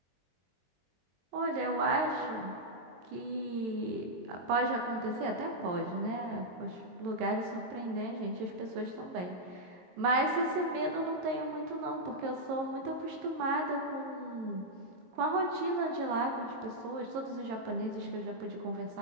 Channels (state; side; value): late; left; 22 ms